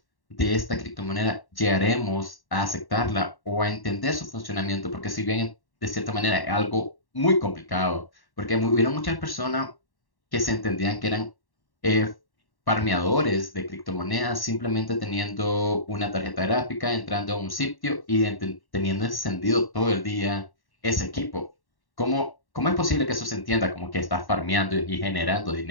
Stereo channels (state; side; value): late; right; 1.1 ms